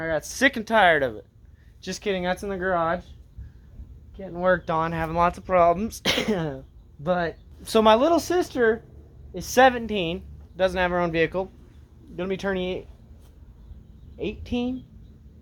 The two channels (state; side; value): identical; both; correlation 1.00